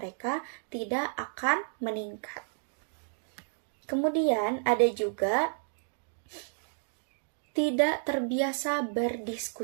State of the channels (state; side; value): silent; left; digital silence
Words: tidak akan meningkat. Kemudian ada juga tidak terbiasa